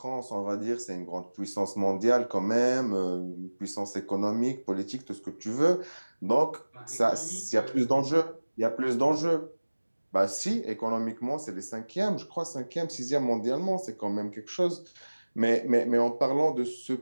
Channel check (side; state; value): both; inverted; correlation -1.00